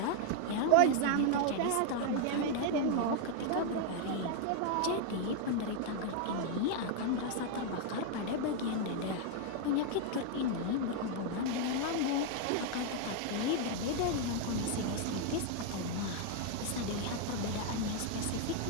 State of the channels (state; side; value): different; both; correlation 0.00